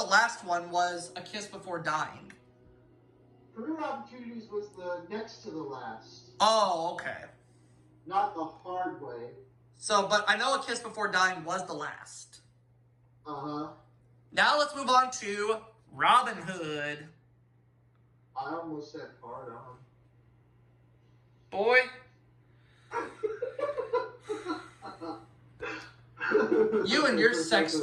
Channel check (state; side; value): identical; both; correlation 1.00